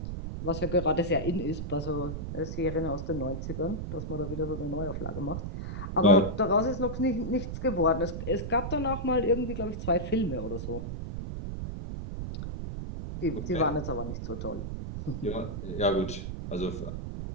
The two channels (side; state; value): right; noise; rumble, 5 dB below the sound